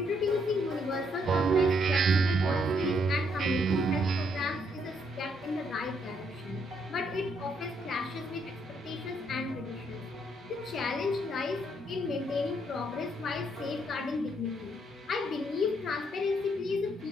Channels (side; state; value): both; normal; correlation 0.73